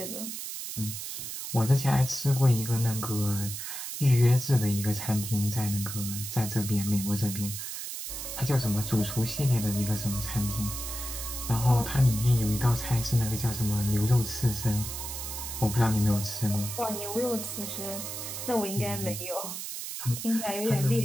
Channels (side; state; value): right; noise; hiss, 7 dB below the sound